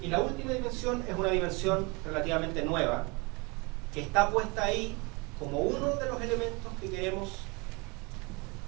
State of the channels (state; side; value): quieter; left; 28.4 dB